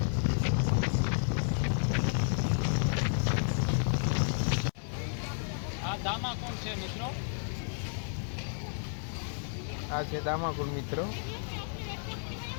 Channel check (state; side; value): silent; right; 56 dB below the other